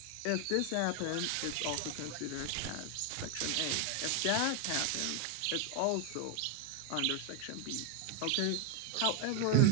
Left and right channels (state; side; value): different; both; correlation 0.01